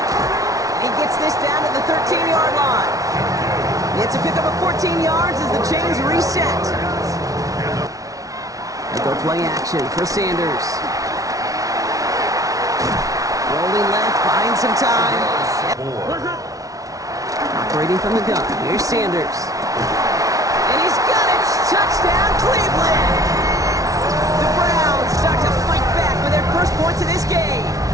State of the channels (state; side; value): late; left; 0.17 ms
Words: He gets this down to the 13-yard line. It's a pickup of 14 yards as the chains reset. And go play action for Sanders. Rolling left, buying some time. Operating from the gun, here's Sanders. And he's got it! Touchdown, Cleveland! The Browns start to fight back with their first points of this game.